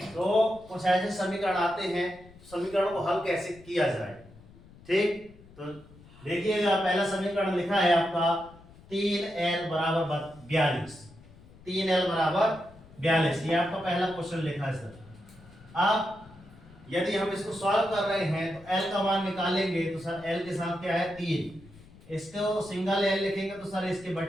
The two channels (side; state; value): left; noise; rumble, 22 dB below the sound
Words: तो कुछ ऐसे समीकरण आते हैं, समीकरणों को हल कैसे किया जाए, ठीक। तो देखिएगा, पहला समीकरण लिखा है आपका 3l बराबर 42। 3l बराबर 42, ये आपका पहला क्वेश्चन लिखा है सर। अब यदि हम इसको सॉल्व कर रहे हैं तो l का मान निकालेंगे तो सर l के साथ क्या है 3। इसको सिंगल l लिखेंगे तो सर इसके